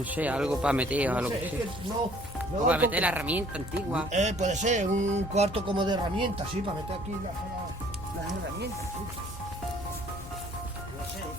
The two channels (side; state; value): both; normal; correlation 0.57